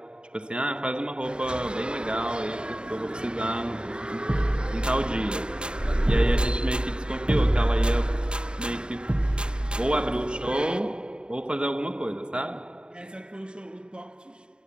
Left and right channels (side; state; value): left; late; 0.050 ms